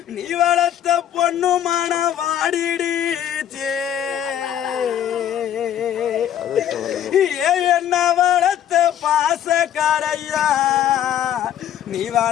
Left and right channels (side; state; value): right; quieter; 10.4 dB